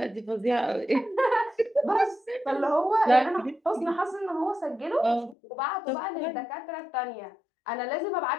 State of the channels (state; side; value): drops out; right; at 5.4 s